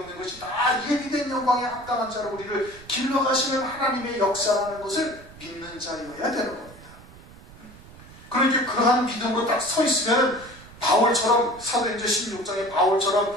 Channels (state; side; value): noise; right; rumble, 20 dB below the sound